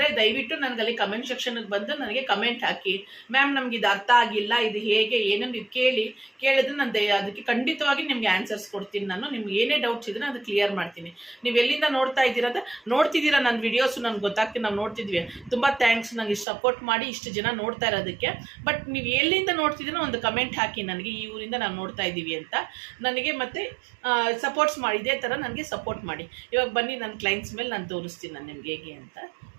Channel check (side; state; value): left; drops out; at 16.4 s